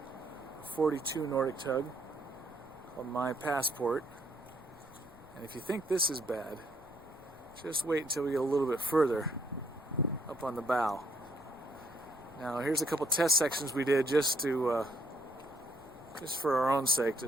42 Nordic tug called My Passport. And if you think this is bad, just wait until we get a little bit further up on the bow. Now here's a couple test sections we did just for our own sake,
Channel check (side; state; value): left; noise; rumble, 24 dB below the sound